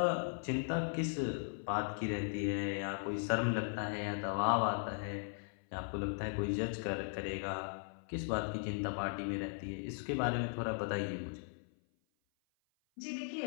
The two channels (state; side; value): silent; right; 53 dB below the other